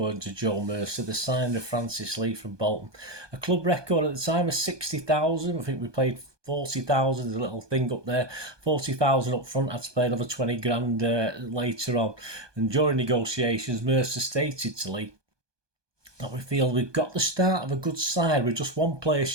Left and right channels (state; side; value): late; left; 1.2 ms